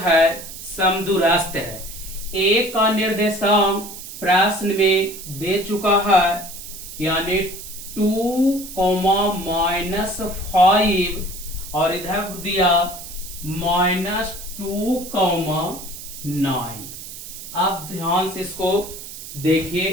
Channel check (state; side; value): noise; right; hiss, 12 dB below the sound